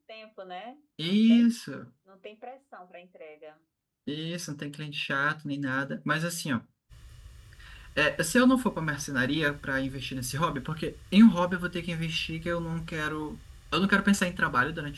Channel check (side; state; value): both; identical; correlation 1.00